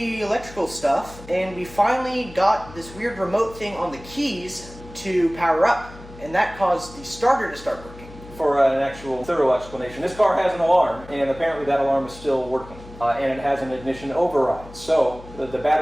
electrical stuff, and we finally got this weird remote thing on the keys to power up, and that caused the starter to start working. For an actual thorough explanation, this car has an alarm, and apparently that alarm is still working, and it has an ignition override. So the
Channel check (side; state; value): left; noise; hum, 18 dB below the sound